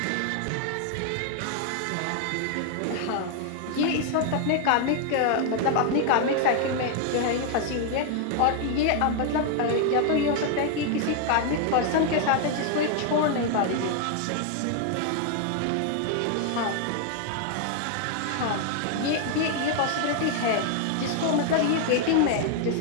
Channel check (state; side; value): different; both; correlation 0.00